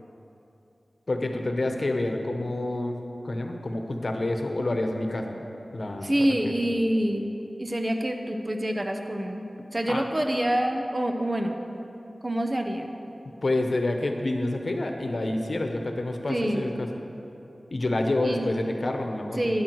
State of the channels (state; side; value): normal; both; correlation 0.97